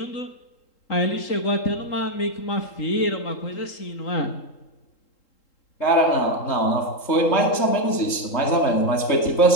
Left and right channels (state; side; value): late; right; 3.7 ms